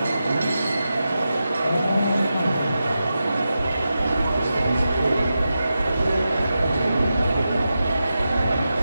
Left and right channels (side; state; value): both; inverted; correlation -0.90